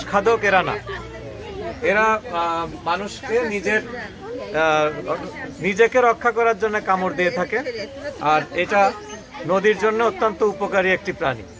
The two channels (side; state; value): both; identical; correlation 1.00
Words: খাদক এরা না। এরা মানুষকে নিজেকে রক্ষা করার জন্য কামড় দিয়ে থাকে। আর এটা নদীর জন্য অত্যন্ত উপকারী একটি প্রাণী।